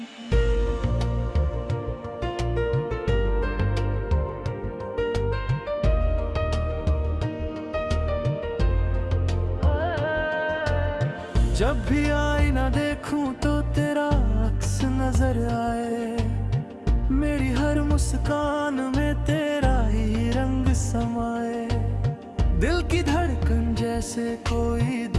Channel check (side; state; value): both; identical; correlation 1.00